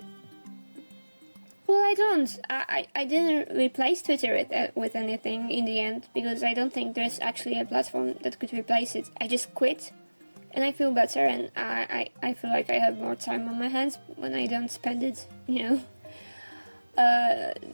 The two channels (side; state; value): both; inverted; correlation -1.00